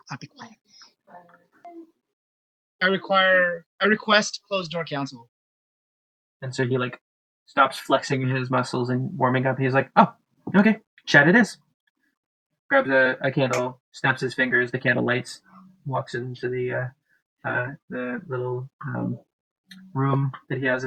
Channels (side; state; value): both; identical; correlation 1.00